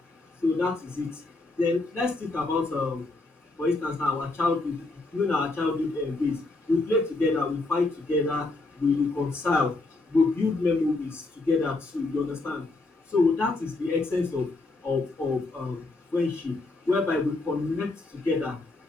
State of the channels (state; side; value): quieter; right; 3.2 dB